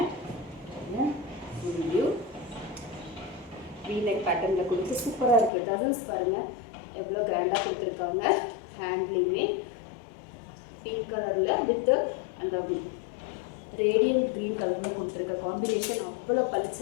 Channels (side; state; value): right; drops out; at 5.5 s